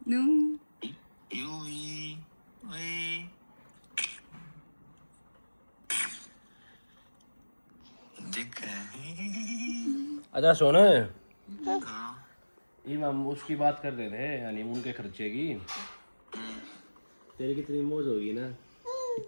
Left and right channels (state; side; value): inverted; both; correlation -1.00